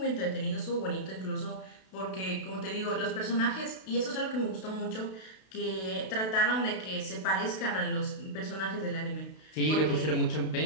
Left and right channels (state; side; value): late; right; 32 ms